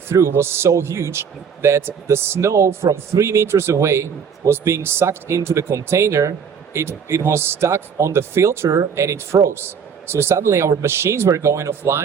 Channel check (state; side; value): quieter; left; 6.8 dB